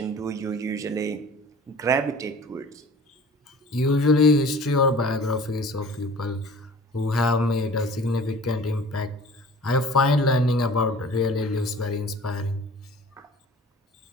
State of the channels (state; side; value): normal; both; correlation 0.45